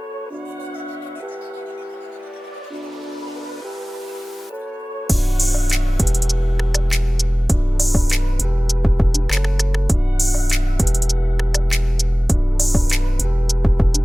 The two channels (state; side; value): normal; both; correlation 0.98